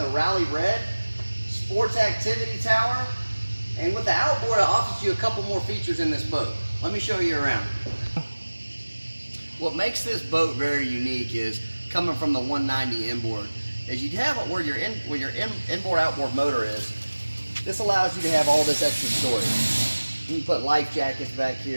Rally Red. Sports activity tower. And with the outboard it offers you a couple more features in this boat. Let me show you around. What makes this boat very unique is coming from the 190 inboard. As you have it where your inboard outboard motor is, this allows you to have all this extra storage. You can put life jackets back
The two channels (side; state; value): both; inverted; correlation -1.00